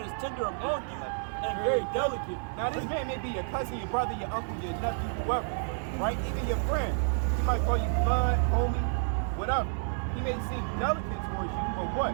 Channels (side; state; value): left; silent; digital silence